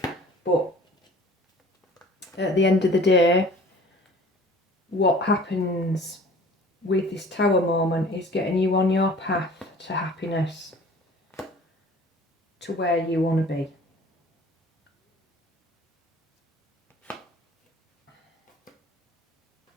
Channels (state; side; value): normal; both; correlation 0.47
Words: But at the end of the day, what happens with this tower moment is getting you on your path to happiness, to where you want to be.